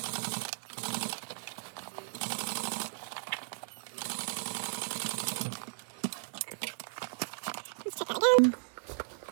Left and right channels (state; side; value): silent; left; digital silence